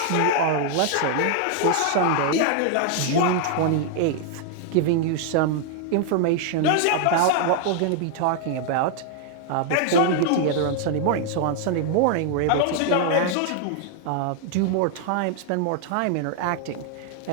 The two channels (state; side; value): different; both; correlation 0.00